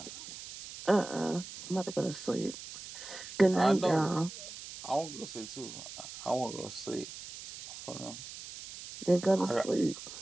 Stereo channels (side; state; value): right; noise; hiss, 12 dB below the sound